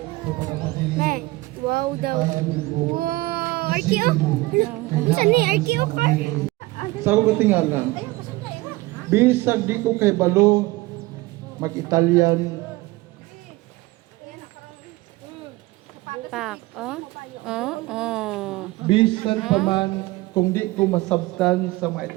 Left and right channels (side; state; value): left; quieter; 20.5 dB